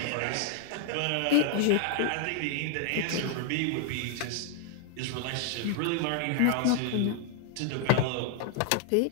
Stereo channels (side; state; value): both; different; correlation -0.01